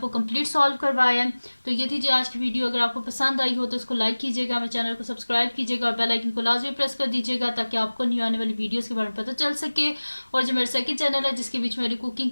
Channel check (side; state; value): both; inverted; correlation -1.00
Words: कंप्लीट सॉल्व करवाया है। तो ये थी जी आज की वीडियो। अगर आपको पसंद आई हो तो इसको लाइक कीजिएगा, मेरे चैनल को सब्सक्राइब कीजिएगा और बेल आइकन को लाजमी प्रेस कर दीजिएगा ताकि आपको न्यू आने वाली वीडियोज़ के बारे में पता चल सके। और जो मेरा सेकंड चैनल है जिसके बीच मेरी कुकिंग